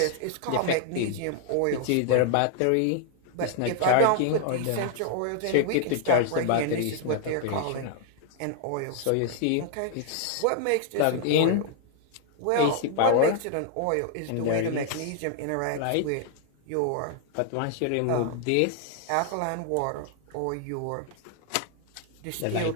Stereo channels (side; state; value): both; different; correlation 0.00